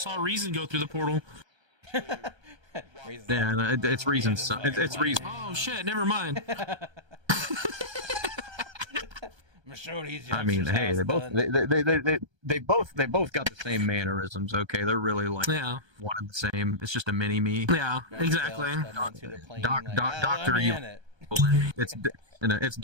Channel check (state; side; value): late; left; 1.3 ms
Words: saw Reason go through the portal. Yeah, it's Reason. It's Reason. Oh shit! Never mind. I mean, hey, they both got the same mannerisms. Okay, they're really like one and the same. It's just a mini me. Yeah, exactly. Doctor Evil. It's